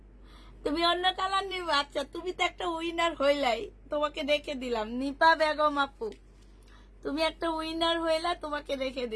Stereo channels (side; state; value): both; identical; correlation 1.00